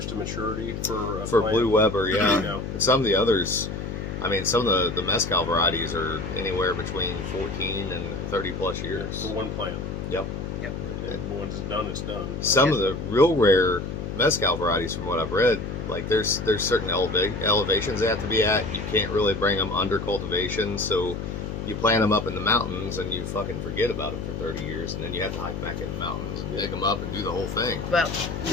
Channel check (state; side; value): noise; left; hum, 5 dB below the sound